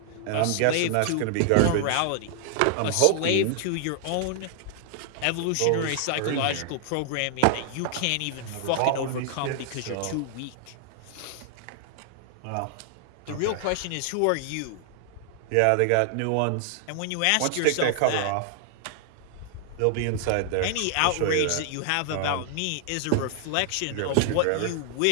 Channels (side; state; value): both; different; correlation 0.00